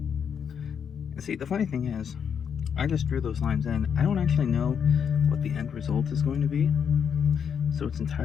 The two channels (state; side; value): quieter; right; 7.4 dB